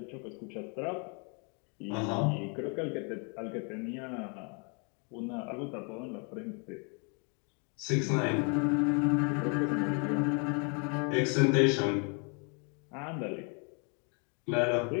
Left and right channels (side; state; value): right; quieter; 36.3 dB